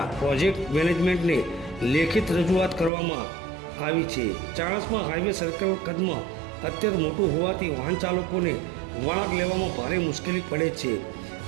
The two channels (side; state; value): left; drops out; at 2.9 s